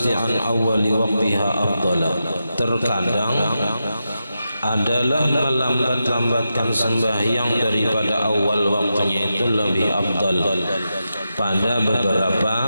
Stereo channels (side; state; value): both; inverted; correlation -0.88